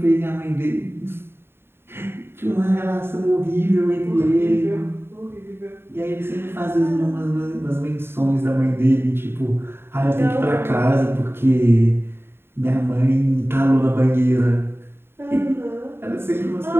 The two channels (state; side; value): late; left; 0.11 ms